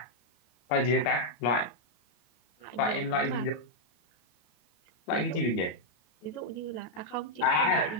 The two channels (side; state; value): right; late; 33 ms